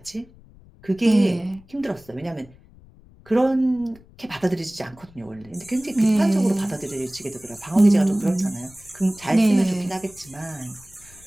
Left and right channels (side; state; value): left; noise; rumble, 24 dB below the sound